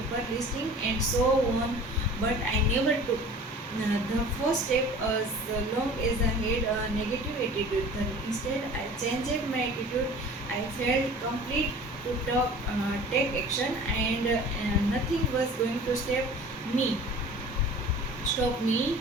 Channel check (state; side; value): normal; both; correlation 0.43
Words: listing, and so on. But I never took the first step as long as I had a negative attitude. Then instead, I changed my attitude. I felt complete to take action, and nothing was going to me stop me.